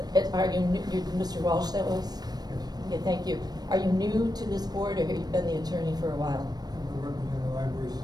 Are you, Mr. Walsh that was? Okay, thank you. Are you new to this board, or have you been the attorney for a while? I've been working in the library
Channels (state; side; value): late; left; 0.19 ms